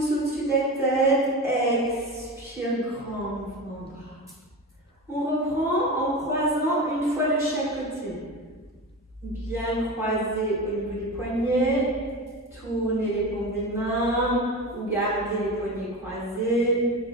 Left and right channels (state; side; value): normal; both; correlation 0.27